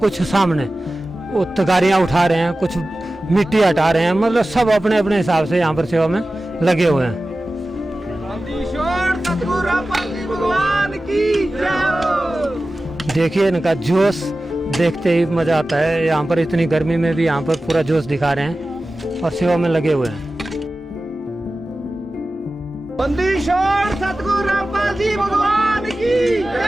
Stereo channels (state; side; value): normal; both; correlation 0.95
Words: सामने वो तगारियाँ उठा रहे हैं, कुछ मिट्टी हटा रहे हैं। मतलब सब अपने अपने हिसाब से यहाँ पर सेवा में लगे हुए हैं। देखिए इनका जोश देखते ही मजा आता है। यहाँ पर इतनी गर्मी में भी यहाँ पर पूरा जोश दिखा रहे हैं और सेवा में लगे हुए हैं। बंदीश्वर सतगुरु रामपाल जी भगवान की